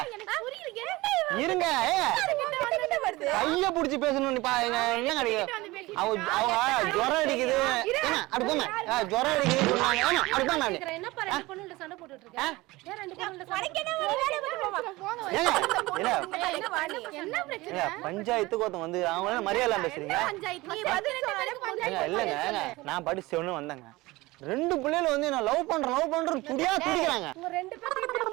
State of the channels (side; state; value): left; quieter; 20.7 dB